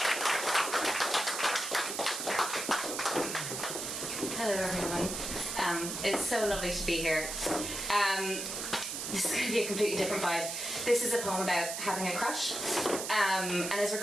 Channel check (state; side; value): noise; right; hiss, 4 dB below the sound